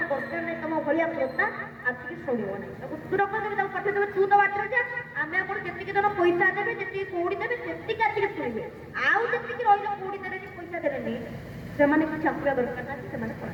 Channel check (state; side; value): identical; both; correlation 1.00